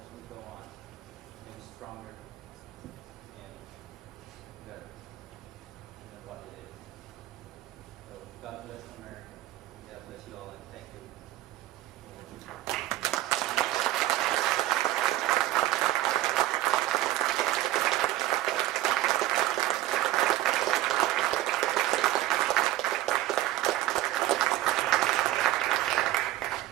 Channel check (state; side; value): quieter; left; 15.5 dB